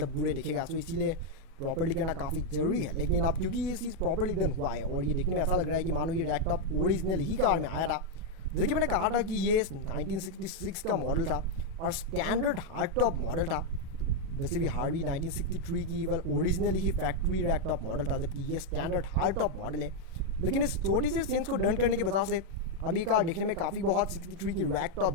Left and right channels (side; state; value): left; late; 37 ms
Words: बुरे दिखेगा। सो इसीलिए प्रॉपरली करना काफ़ी ज़रूरी है। लेकिन अब क्योंकि ये चीज़ प्रॉपरली डन हुआ है, और ये देखने में ऐसा लग रहा है कि मानो ये रैक टॉप ओरिजिनल ही कार में आया था। जैसे कि मैंने कहा था कि ये 1966 का मॉडल था और स्टैंडर्ड हार्ड टॉप मॉडल था। वैसे भी हार्वी 1963 की वेल ओरिजिनली ही फैक्ट्री रैक टॉप मॉडल था, जबकि ये स्टैंडर्ड हार्ड टॉप मॉडल है। लेकिन इस छोटी सी चेंज को डन करने की वजह से अब ये कार देखने में काफ़ी बहुत 63 की रैक